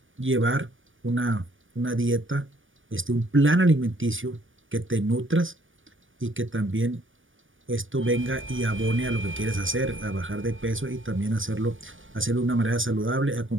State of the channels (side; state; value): left; late; 0.57 ms